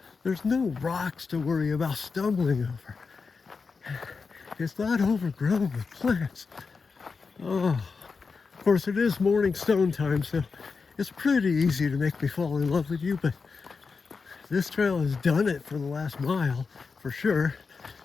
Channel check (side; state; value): right; quieter; 4.9 dB